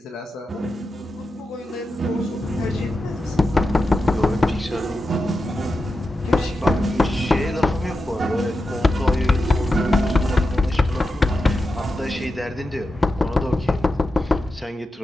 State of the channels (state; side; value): normal; both; correlation 0.90